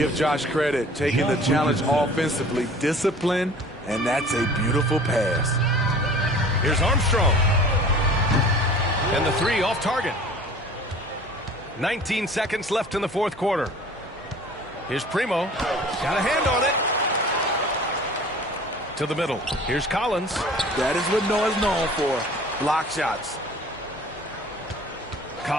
Josh credit, taking the challenge offensively, discipline, and that's a beautiful pass. Here's Armstrong. And the three off target. 19 seconds left in the fourth quarter. Here's Primo. Got a hand on it. To the middle. Here's Collins. That is what Noah's known for. Block shots.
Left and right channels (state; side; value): normal; both; correlation 0.45